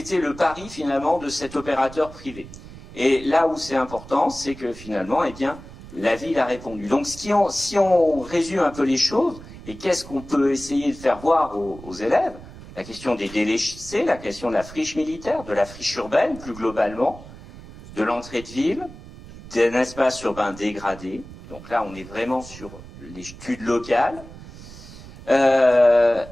le pari finalement de cet opérateur privé. Et là où c'est important, c'est que finalement, eh bien, la ville a répondu. Donc si on résume un peu les choses, et qu'est-ce qu'on peut essayer de faire voir aux élèves, la question des délaissés, la question de la friche militaire, de la friche urbaine plus globalement, de l'entrée de ville, d'un espace urbain dégradé. Donc là, on est vraiment sur l'étude locale,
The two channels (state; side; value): noise; right; rumble, 16 dB below the sound